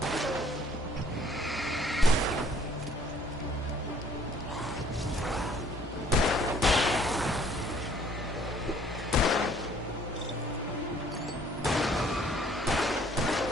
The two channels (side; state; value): both; normal; correlation 0.59